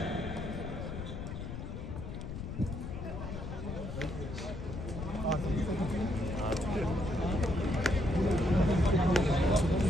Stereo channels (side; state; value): left; noise; rumble, 7 dB below the sound